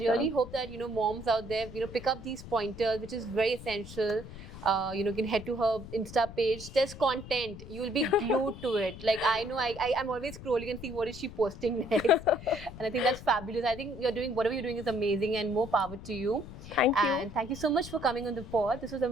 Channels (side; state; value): left; noise; rumble, 13 dB below the sound